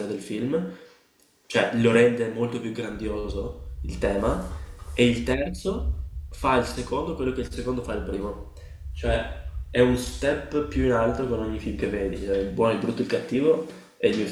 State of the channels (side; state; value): both; identical; correlation 1.00